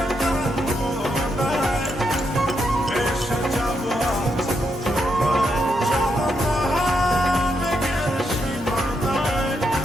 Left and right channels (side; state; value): both; normal; correlation 0.81